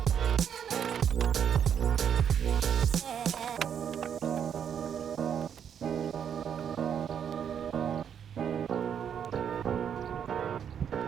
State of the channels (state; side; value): quieter; left; 8.3 dB